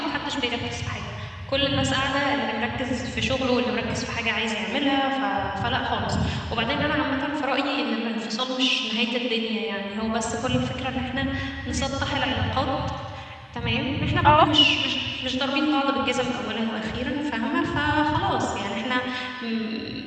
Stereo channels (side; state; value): both; identical; correlation 1.00